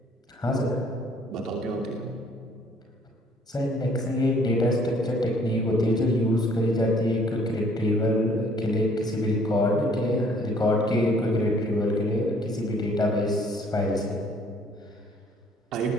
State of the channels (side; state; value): both; normal; correlation 0.60